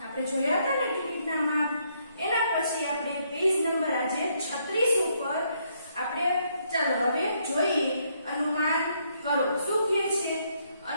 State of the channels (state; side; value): inverted; both; correlation -0.72